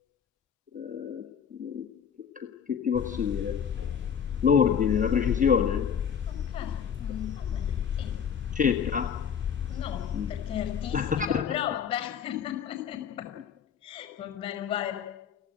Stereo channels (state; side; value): quieter; right; 7.6 dB